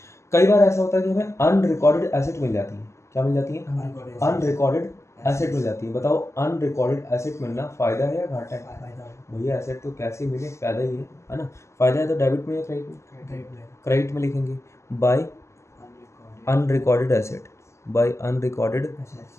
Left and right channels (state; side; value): late; right; 0.13 ms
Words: कई बार ऐसा होता है कि हमें अनरिकॉर्डेड एसेट मिल जाती है। क्या मिल जाती है? अनरिकॉर्डेड एसेट मिल जाती है। बताओ अनरिकॉर्डेड एसेट मिलना फायदा है या घाटा है? भैया एसेट तो कैसे मिले, फायदा ही है ना। फायदा है तो डेबिट में या क्रेडिट में? क्रेडिट में लिखेंगे by unrecorded asset, by unrecorded